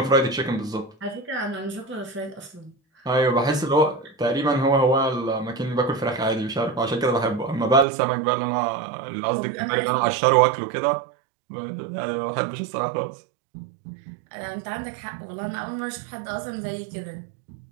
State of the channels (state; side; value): drops out; left; at 7.9 s